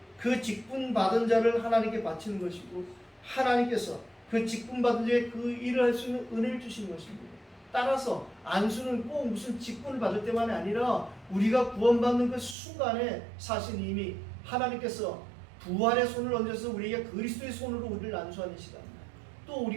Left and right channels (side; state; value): left; drops out; at 12.6 s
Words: 그 직분 받은 자를 하나님께 바치는 것이고, 하나님께서 그 직분 받은 자에 그 일을 할 수 있는 은혜를 주시는 것입니다. 따라서 안수는 꼭 무슨 직분을 받을 때만이 아니라 우리가 구원받는 그 순간에 사실 이미 하나님께서 부활의 손을 얹어서 우리에게 그리스도의 손으로 우리를 안수하는 시간, 또